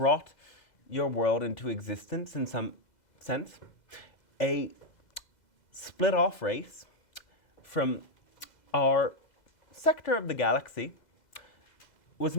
your world into existence in some sense. A split-off race from our sector of the galaxy was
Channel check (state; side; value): late; right; 2.0 ms